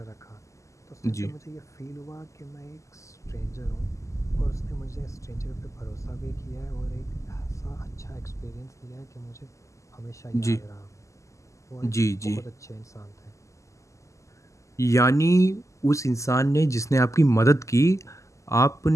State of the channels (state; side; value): late; right; 0.15 ms